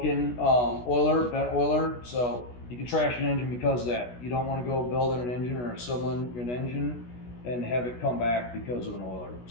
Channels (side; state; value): right; late; 16 ms